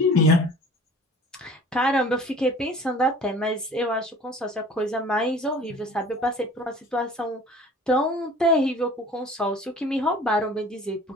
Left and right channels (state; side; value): normal; both; correlation 0.46